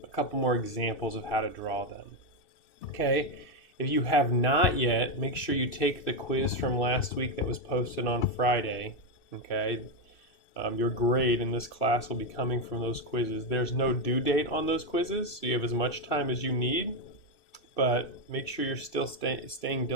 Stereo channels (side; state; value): right; late; 2.6 ms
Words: a couple more examples of how to draw them. Okay, if you have not yet, make sure you take the quiz from last week that was posted on Friday. Okay, your grade in this class will be coming from those quizzes. There's no due date on those quizzes, so you have as much time as you need, but make sure you're still staying